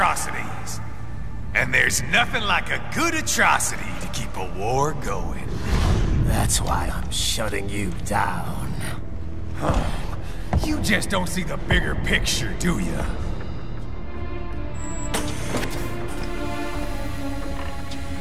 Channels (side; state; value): both; identical; correlation 1.00